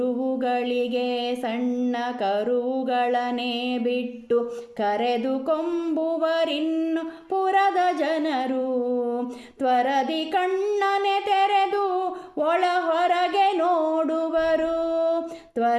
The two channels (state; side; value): identical; both; correlation 1.00